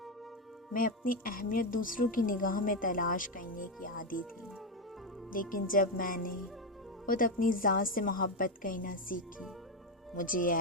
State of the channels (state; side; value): normal; both; correlation 0.09